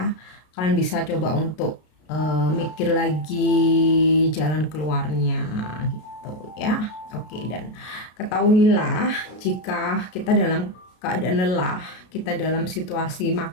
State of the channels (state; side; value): late; right; 33 ms